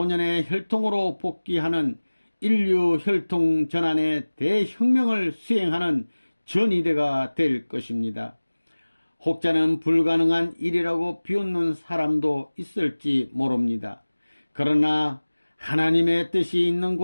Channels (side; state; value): both; inverted; correlation -1.00